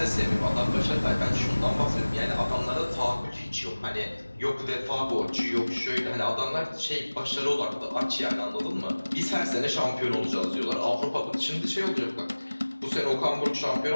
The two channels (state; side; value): inverted; both; correlation -1.00